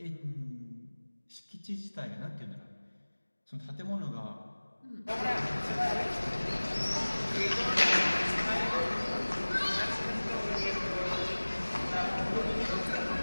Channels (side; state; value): both; inverted; correlation -1.00